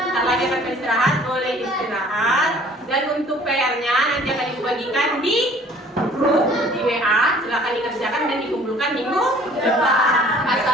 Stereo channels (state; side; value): normal; both; correlation 0.53